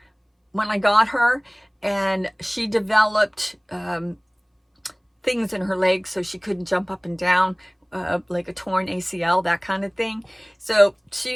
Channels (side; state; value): both; identical; correlation 1.00